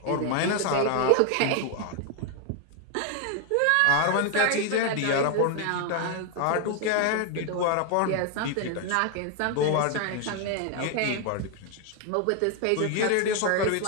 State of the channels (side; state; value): both; different; correlation 0.01